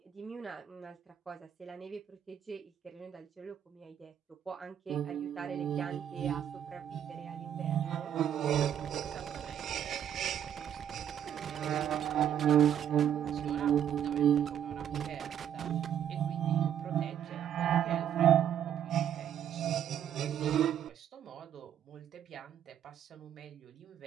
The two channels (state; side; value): quieter; left; 9.7 dB